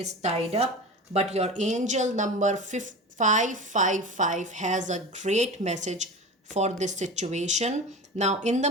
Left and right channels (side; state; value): both; normal; correlation 0.31